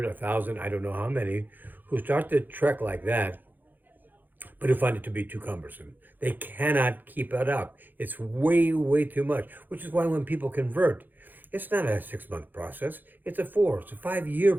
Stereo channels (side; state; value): left; late; 0.087 ms